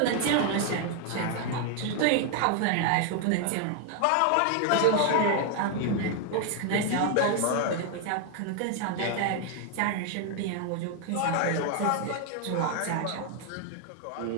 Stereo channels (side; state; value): both; different; correlation 0.01